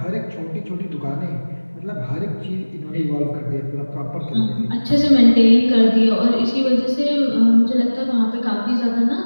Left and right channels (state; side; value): inverted; both; correlation -1.00